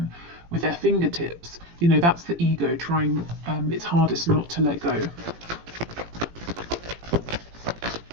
with their fingertips. You know, that's the ego trying its hardest not to let go.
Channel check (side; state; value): left; late; 18 ms